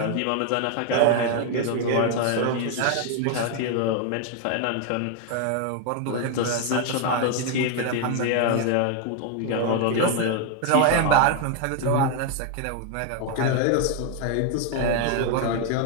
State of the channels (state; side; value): different; both; correlation 0.00